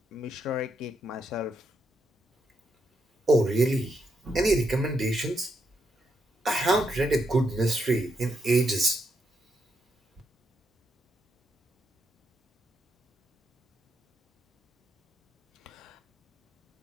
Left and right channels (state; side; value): normal; both; correlation 0.80